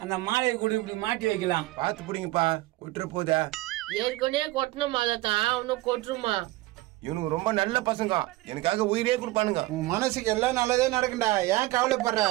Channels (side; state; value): left; quieter; 18.9 dB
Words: அந்த மாலையை கூட இப்படி மாட்டி வைக்கலாம். பாத்து பிடிங்கப்பா, கொட்டுற போதா. ஏற்கனவே கொட்டணும் தான் அவனும் கொட்டுருமா. இவனுக்கு ரொம்ப நல்ல பசங்க, எனக்காக உயிரே கொடுப்பானுங்க. உன் மனசுக்கு எல்லாம் நல்லதே நடக்கும்டா, ஏன் கவலைப்படுற?